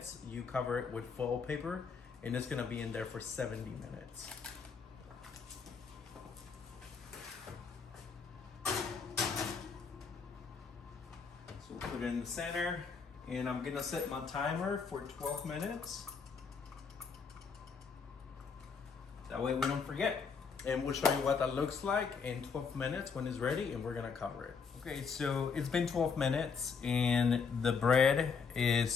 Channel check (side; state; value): right; quieter; 5.6 dB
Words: you cover it with foil paper, and it's gonna be in there for 70 minutes. So we'll put it in the center, and I'm gonna set my timer for 12 minutes. That way we don't forget. And we'll show you what that looks like in 12 minutes when it's ready, and we're gonna cover it. Okay, so it's been 12 minutes and the bread